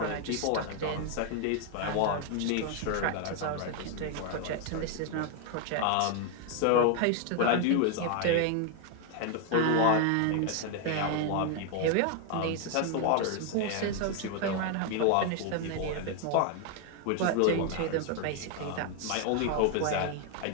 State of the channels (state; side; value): different; both; correlation 0.01